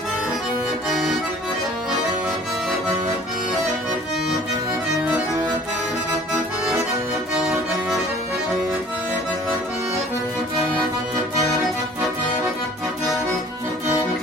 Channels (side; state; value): both; normal; correlation 0.51